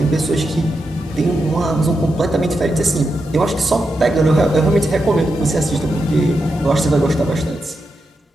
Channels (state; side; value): normal; both; correlation 0.87